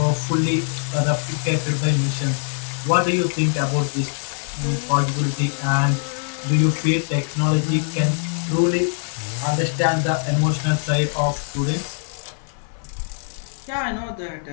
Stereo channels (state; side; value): silent; right; 63 dB below the other